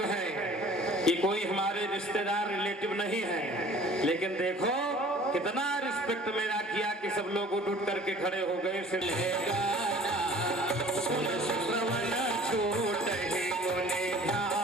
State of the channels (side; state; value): both; normal; correlation 0.49